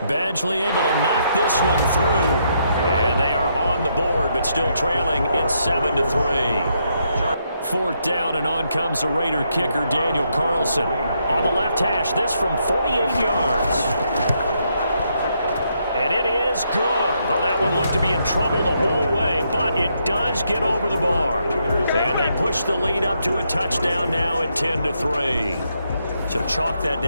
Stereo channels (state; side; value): inverted; both; correlation -0.77